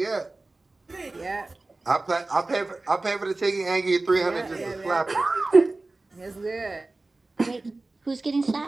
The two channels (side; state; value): left; quieter; 3.2 dB